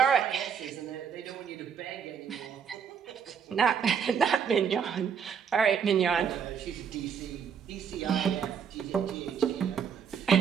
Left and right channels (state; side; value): quieter; left; 7.2 dB